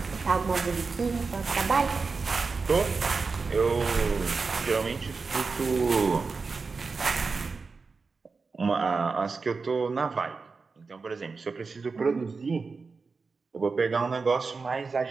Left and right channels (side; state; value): left; quieter; 4.5 dB